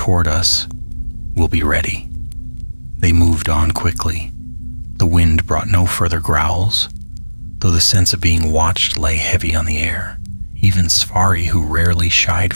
us, we'll be ready. They moved on quickly. The wind brought no further growls, though the sense of being watched lay heavy on the air. Even Svari, who rarely shied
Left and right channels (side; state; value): both; inverted; correlation -1.00